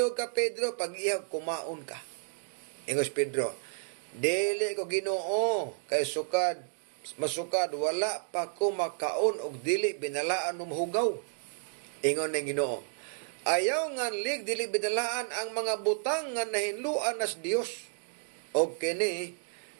ka Pedro pag iyaw kumaon ka. Ingos Pedro, dili ko Ginoo kay masukad wala pa ko makaon og dili binalaan hugaw. Ingon ng Ginoo, ayaw nga dili binalaan ang mga butang nga nahinluan nas Dios. Og kini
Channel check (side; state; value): left; silent; digital silence